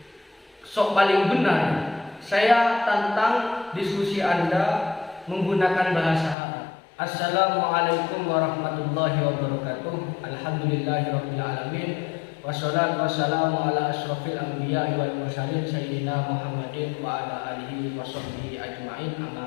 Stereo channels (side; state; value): right; drops out; at 6.4 s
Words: sok paling benar, saya tantang diskusi Anda menggunakan bahasa Arab. Assalamualaikum warahmatullahi wabarakatuh. Alhamdulillahirabbil alamin. Wassalatu wassalamu ala asyrofil anbiya'i wal mursalin sayyidina Muhammadin wa ala alihi washabbihi ajmain, amma